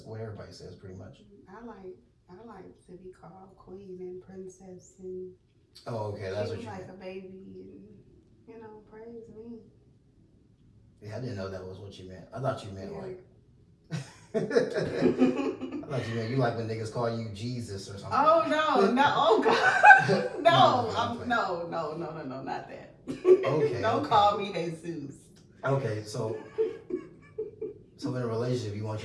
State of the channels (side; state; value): both; identical; correlation 1.00